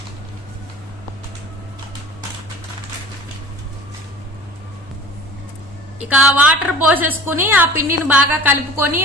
ఇక వాటర్ పోసేసుకుని ఆ పిండిని బాగా కలుపుకొని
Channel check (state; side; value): normal; both; correlation 0.41